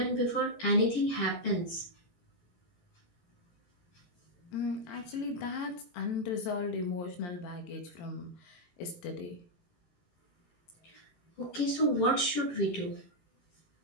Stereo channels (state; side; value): late; right; 18 ms